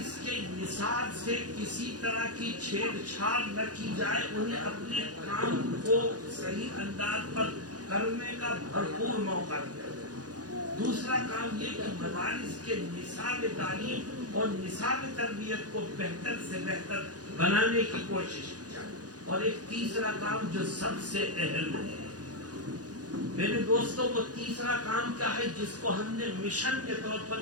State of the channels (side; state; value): left; late; 0.68 ms